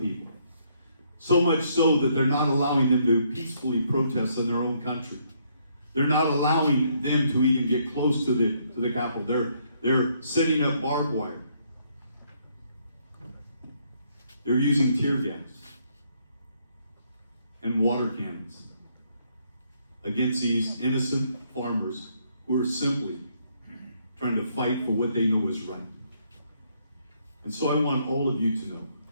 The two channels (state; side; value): inverted; both; correlation -0.71